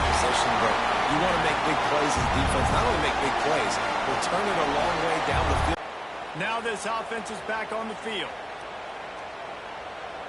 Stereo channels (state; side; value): identical; both; correlation 1.00